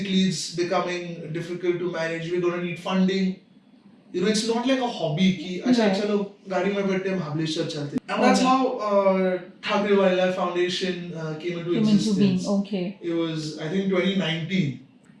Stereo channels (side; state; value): both; identical; correlation 1.00